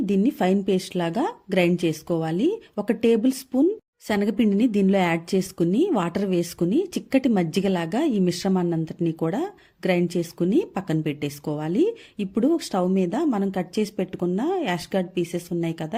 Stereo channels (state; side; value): identical; both; correlation 1.00